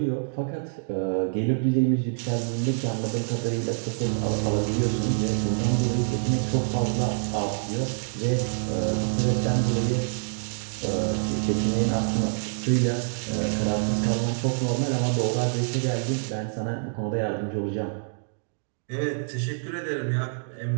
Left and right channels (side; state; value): left; silent; digital silence